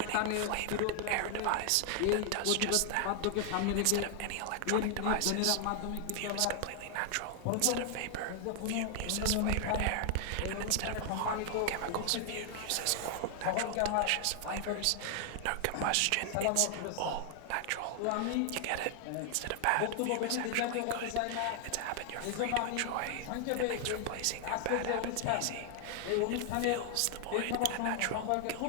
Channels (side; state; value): both; different; correlation 0.00